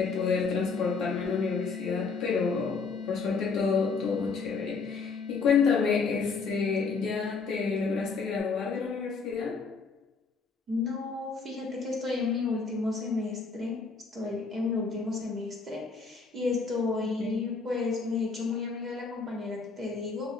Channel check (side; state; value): right; quieter; 4.8 dB